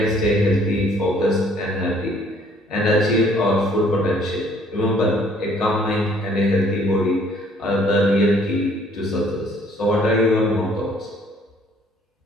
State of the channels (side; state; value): both; normal; correlation 0.60